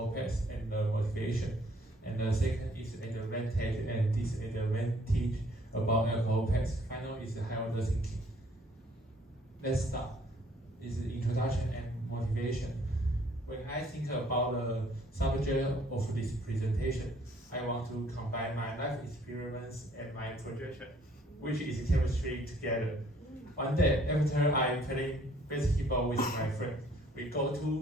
pass and the motivation. And the second is advantage and disadvantage about alcohol pass. Final is high-order thinking. Let's start. This is introduction and motivation. When I think about the subject of this presentation, I want to combine my life experiments and my projection, which is chemistry, together. One day, after I'm playing basketball with my friend, we go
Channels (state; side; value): normal; both; correlation 0.61